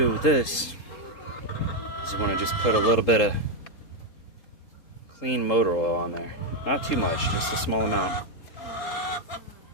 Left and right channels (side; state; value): right; late; 3.7 ms